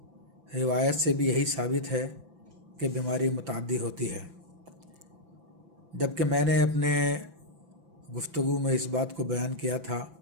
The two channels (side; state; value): left; late; 5.9 ms